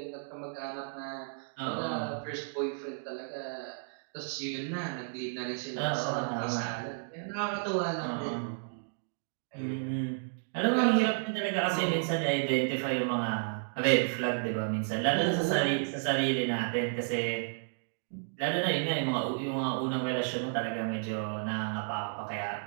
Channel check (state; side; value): silent; left; digital silence